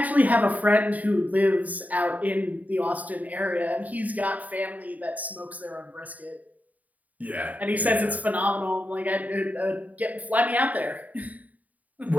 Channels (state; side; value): late; left; 0.074 ms